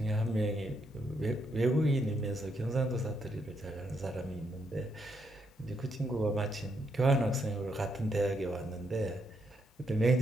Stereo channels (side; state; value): both; normal; correlation 0.77